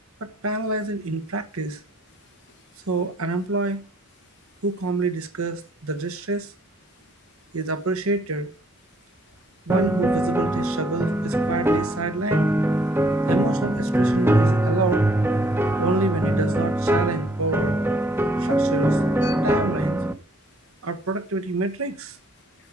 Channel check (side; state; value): both; normal; correlation 0.64